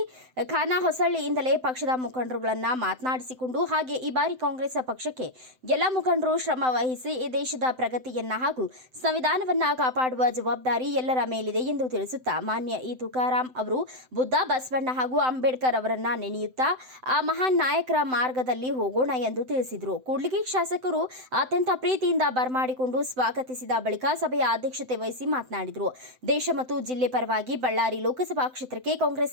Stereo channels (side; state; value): left; late; 7.8 ms